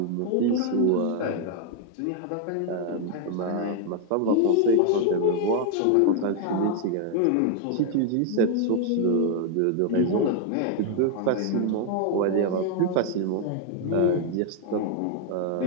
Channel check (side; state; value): both; different; correlation 0.01